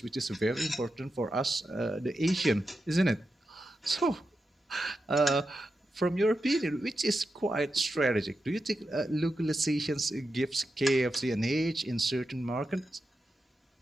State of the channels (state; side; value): normal; both; correlation 0.89